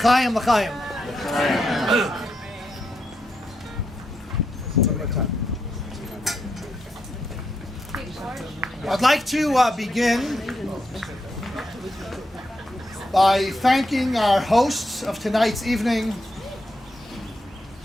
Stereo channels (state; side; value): normal; both; correlation 0.83